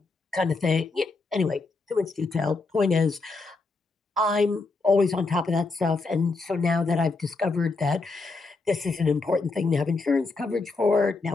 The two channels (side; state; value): right; quieter; 3.7 dB